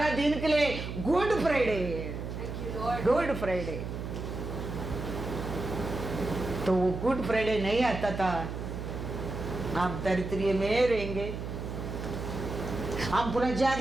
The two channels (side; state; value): right; noise; hum, 6 dB below the sound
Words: दिन के लिए गुड फ्राइडे, गुड फ्राइडे। तो वो गुड फ्राइडे नहीं आता था, आप दरिद्री में रहेंगे, हम